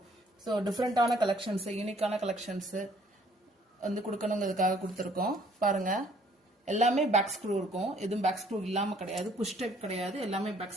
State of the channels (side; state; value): both; normal; correlation 0.61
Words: ஸோ டிஃப்ரெண்டான கலெக்ஷன்ஸ் யூனிக்கான கலெக்ஷன்ஸ் வந்து கொடுக்கணுங்கிறதுக்காக கொடுத்துருக்கோம். பாருங்க எல்லாமே பேக் ஸ்க்ரூ இருக்கும். எதுவும் பேக் ஸ்க்ரூ இல்லாம கிடையாது. புஷ் டைப் கிடையாது. எல்லாமே பேக்